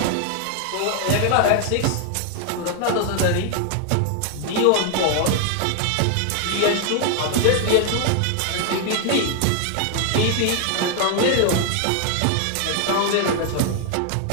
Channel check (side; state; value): both; different; correlation 0.00